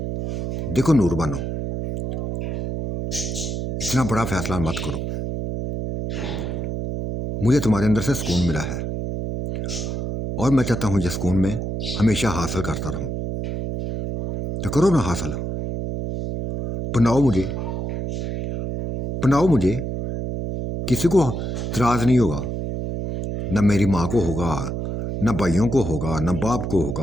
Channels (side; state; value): right; noise; hum, 3 dB below the sound